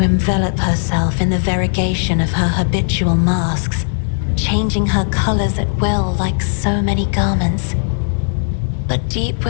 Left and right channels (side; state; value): right; silent; 64 dB below the other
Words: envelop herself in the variegation of her habitual masks, changing her colors at will like so many garments. But deep